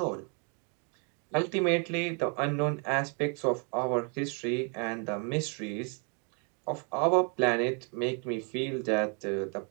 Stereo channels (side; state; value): left; quieter; 37.6 dB